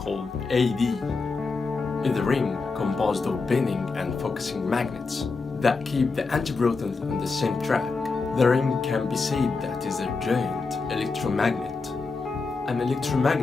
AD, is a ring composed of bending and focusing magnets that keep the antiprotons on the same track. The ring can be said that is a giant electromagnet. An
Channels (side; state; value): right; quieter; 4.2 dB